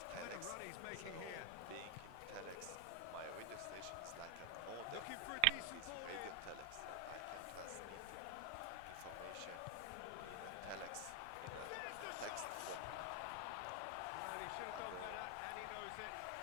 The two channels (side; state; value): both; different; correlation 0.00